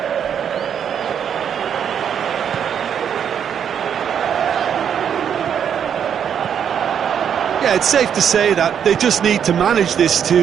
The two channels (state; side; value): quieter; left; 8.3 dB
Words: Yeah, it's safe to say that they just need to manage this